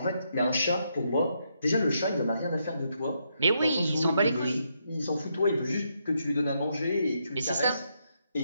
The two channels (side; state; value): both; inverted; correlation -0.78